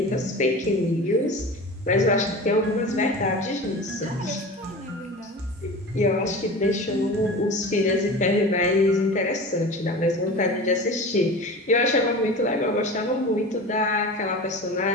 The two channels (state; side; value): normal; both; correlation 0.34